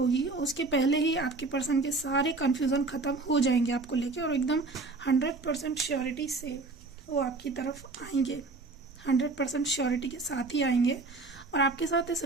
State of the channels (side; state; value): left; quieter; 3.6 dB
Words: उसके पहले ही आपके पर्सन के सारे कन्फ्यूज़न ख़त्म हो जाएंगे आपको लेके, और एकदम 100% श्योरिटी से वो आपकी तरफ आएंगे, 100% श्योरिटी के साथ ही आएंगे और आपके साथ इस